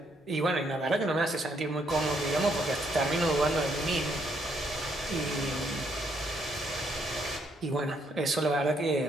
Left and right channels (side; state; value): both; normal; correlation 0.72